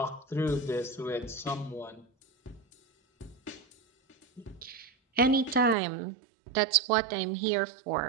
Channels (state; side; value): drops out; left; at 5.8 s